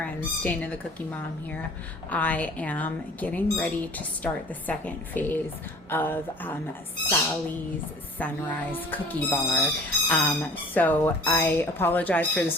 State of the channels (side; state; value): both; normal; correlation 0.47